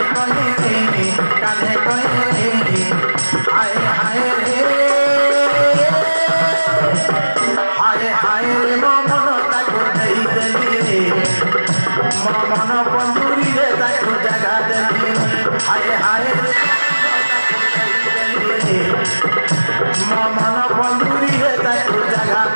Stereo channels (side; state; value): both; inverted; correlation -1.00